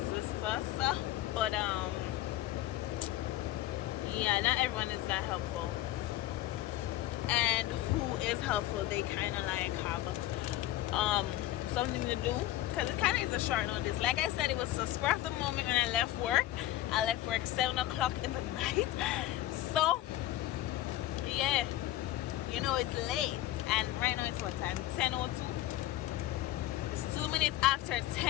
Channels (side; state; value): right; quieter; 14.8 dB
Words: us, but yeah, not everyone is that helpful, and who is helpful, they kind of like have something to do, because it kind of is a short notice. Like I said, it was a spur of the moment when I left work. I left work 7 o'clock in the night, so yeah, you know, it's late, and right now it's what time? 10:02. It's 2 minutes after